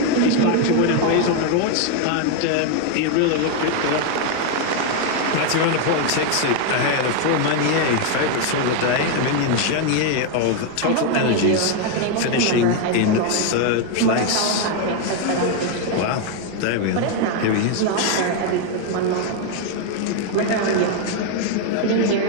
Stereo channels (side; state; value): both; different; correlation 0.01